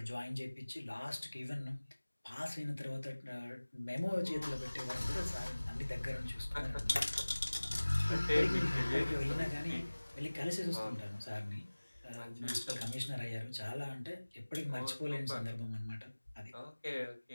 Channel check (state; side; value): inverted; both; correlation -1.00